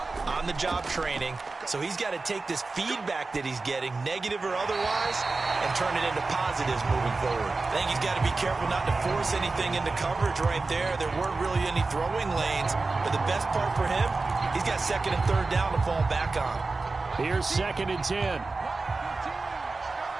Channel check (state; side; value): quieter; left; 3.7 dB